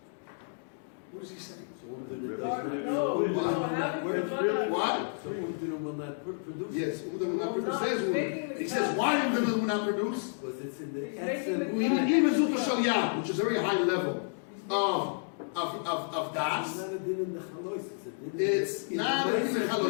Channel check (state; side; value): silent; right; digital silence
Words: What is he saying? What? So Umdina will not produce. Yes, Umdina will not produce. He says, why Umdina will not produce? Because it's in the He's essence. making Which is a very high level of das. It's not a din in the chalois. It's not a din in the